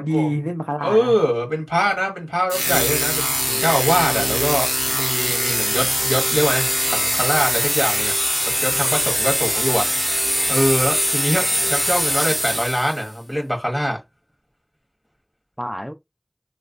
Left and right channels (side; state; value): both; identical; correlation 1.00